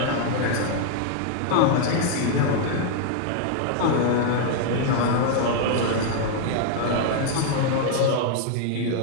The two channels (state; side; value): different; both; correlation 0.00